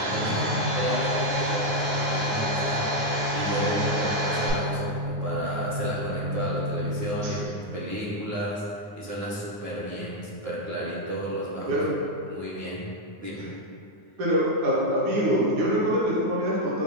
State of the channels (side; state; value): left; late; 9.5 ms